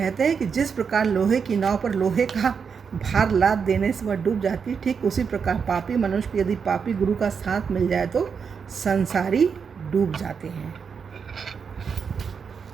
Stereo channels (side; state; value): left; quieter; 6.2 dB